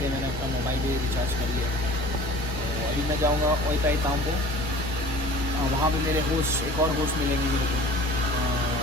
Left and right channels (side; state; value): both; normal; correlation 0.44